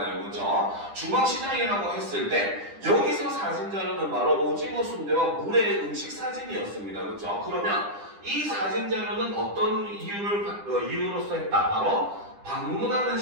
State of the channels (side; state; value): left; late; 10 ms